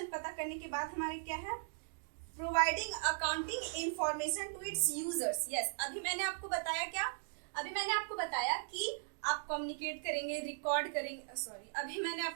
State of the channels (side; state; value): left; silent; digital silence